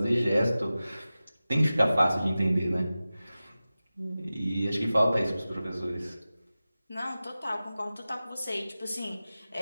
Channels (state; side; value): inverted; both; correlation -0.96